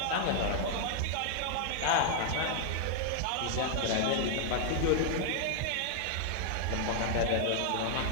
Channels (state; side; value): different; both; correlation -0.01